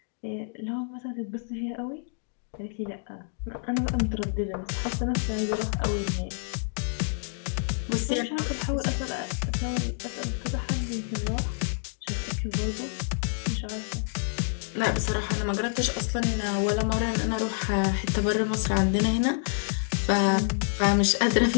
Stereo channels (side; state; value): right; silent; digital silence